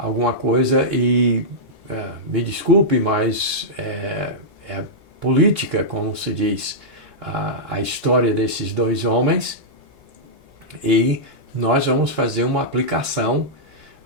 coisa e, me desculpe, mas é política, como se diz, a história desses dois homens. E nós vamos fazer uma aplicação,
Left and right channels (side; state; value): both; normal; correlation -0.11